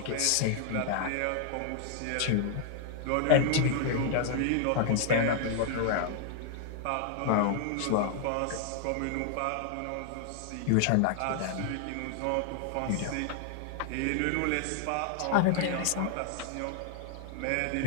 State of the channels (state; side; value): different; both; correlation 0.00